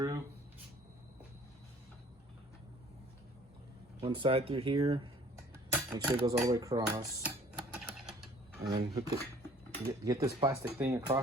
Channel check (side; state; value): both; normal; correlation 0.54